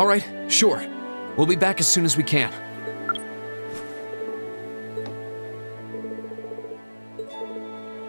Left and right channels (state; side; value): inverted; both; correlation -1.00